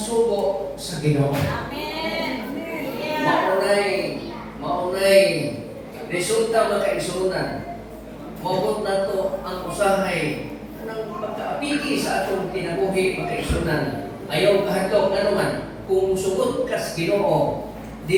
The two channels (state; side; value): identical; both; correlation 1.00